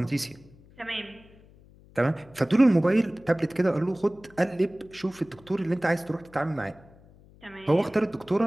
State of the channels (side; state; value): left; noise; hum, 25 dB below the sound